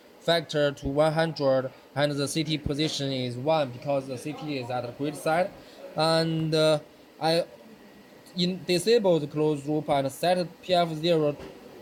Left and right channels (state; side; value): identical; both; correlation 1.00